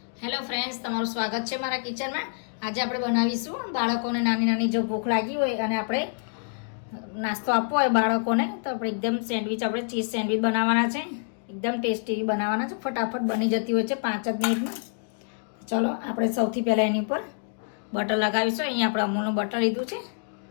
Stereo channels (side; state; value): right; silent; digital silence